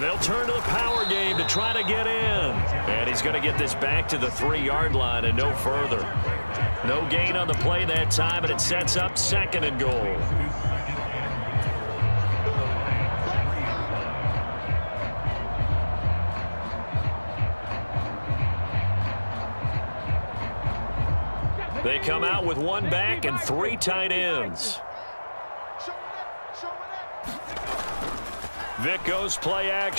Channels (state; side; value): inverted; both; correlation -1.00